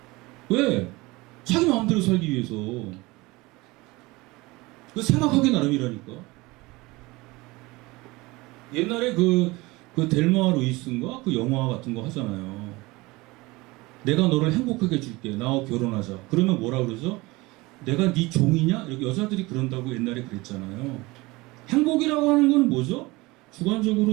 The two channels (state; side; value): quieter; left; 22.2 dB